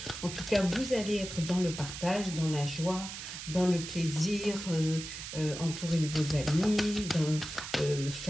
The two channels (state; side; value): noise; right; hiss, 9 dB below the sound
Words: En tout cas, vous allez être dans le partage, dans la joie, dans le plaisir, entouré de vos amis,